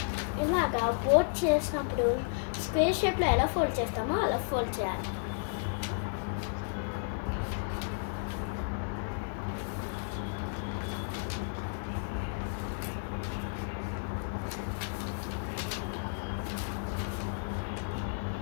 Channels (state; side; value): silent; right; digital silence